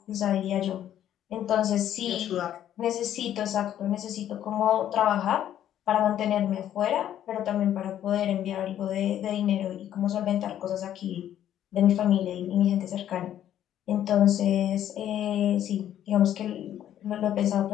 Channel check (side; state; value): right; quieter; 11.1 dB